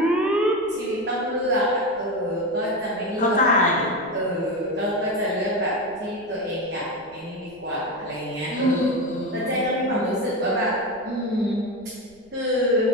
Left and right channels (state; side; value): noise; right; rumble, 28 dB below the sound